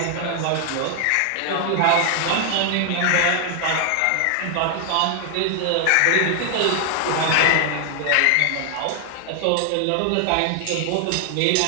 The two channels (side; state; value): both; different; correlation 0.00